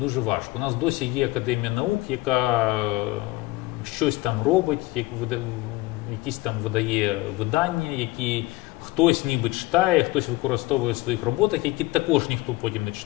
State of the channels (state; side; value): quieter; right; 19.9 dB